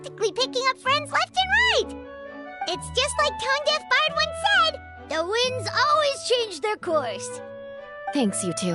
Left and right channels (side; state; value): both; identical; correlation 1.00